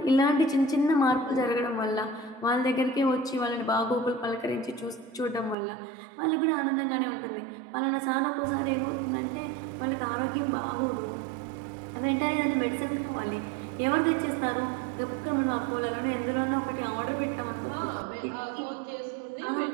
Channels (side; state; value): left; drops out; at 5.6 s